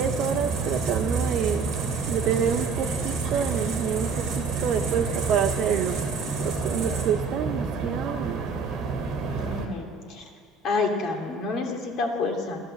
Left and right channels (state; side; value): quieter; left; 4.2 dB